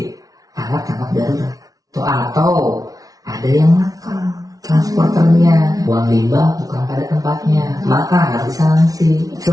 alat tangkap darurat. Atau ada yang nakal transporternya, buang limbah bukan pada tempatnya, maka harus disanksi.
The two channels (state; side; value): late; left; 0.18 ms